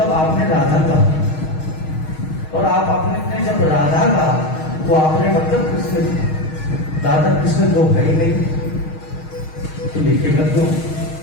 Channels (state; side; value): late; right; 6.4 ms